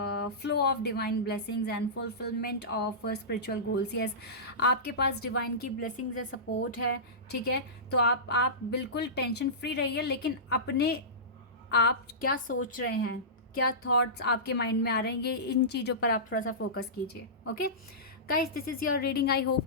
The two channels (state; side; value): normal; both; correlation -0.19